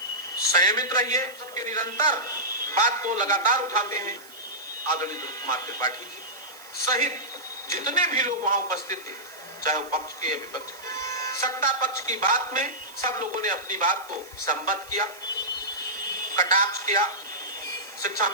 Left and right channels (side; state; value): right; noise; hiss, 20 dB below the sound